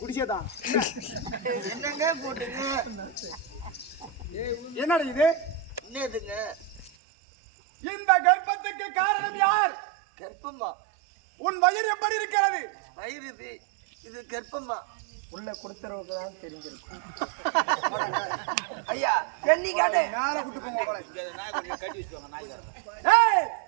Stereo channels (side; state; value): left; drops out; at 6.9 s